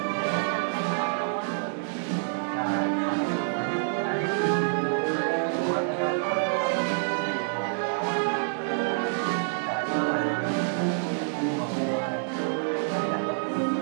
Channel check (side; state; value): left; silent; digital silence